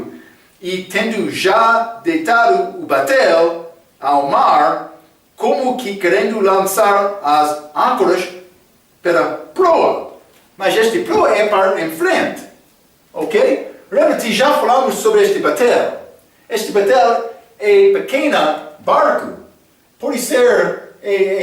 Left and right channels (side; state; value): both; identical; correlation 1.00